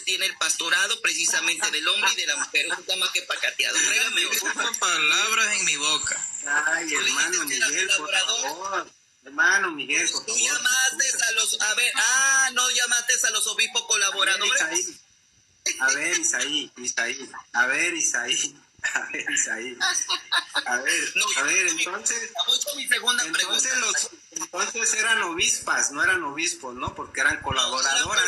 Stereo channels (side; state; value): both; identical; correlation 1.00